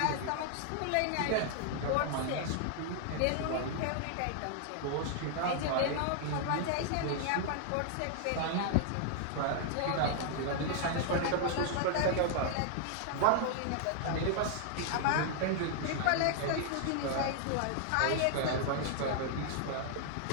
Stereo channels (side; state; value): both; different; correlation -0.01